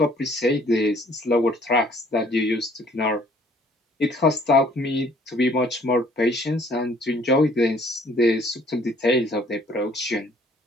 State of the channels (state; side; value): normal; both; correlation 0.59